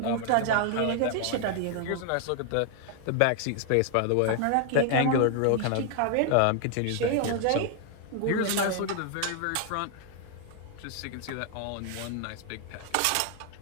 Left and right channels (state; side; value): different; both; correlation 0.00